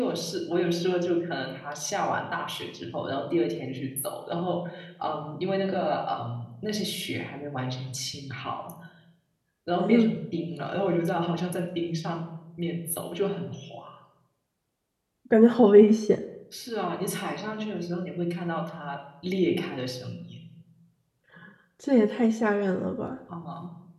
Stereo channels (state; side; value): identical; both; correlation 1.00